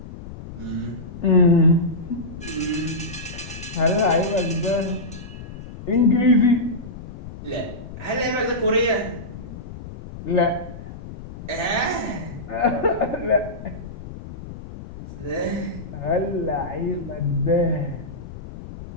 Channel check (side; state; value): left; noise; rumble, 12 dB below the sound